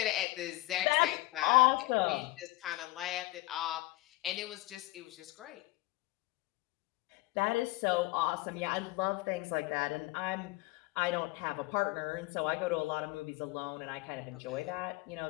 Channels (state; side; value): quieter; right; 19.9 dB